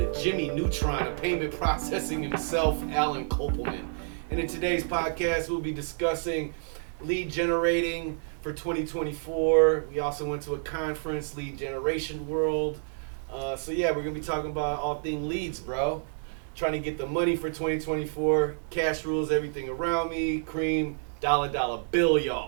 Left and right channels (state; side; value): silent; left; digital silence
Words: Jimmy Neutron of payment processing himself, Alan Kopelman. And in today's podcast, we'll be discussing lead generating for 2024. We also went to a conference, Lead Generation World. So yeah, we're going to be talking about all things leads, bro. Trying to get the money for 2024. Cash rules everything around me. Cream, dollar bill,